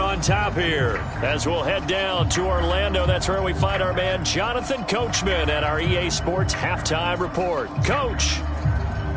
on top here. As we'll head down to Orlando, that's where we find our man Jonathan Coachman at our EA Sports Halftime Report. Coach.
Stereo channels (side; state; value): both; identical; correlation 1.00